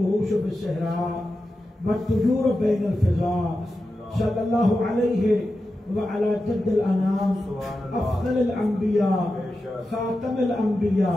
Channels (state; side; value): normal; both; correlation 0.91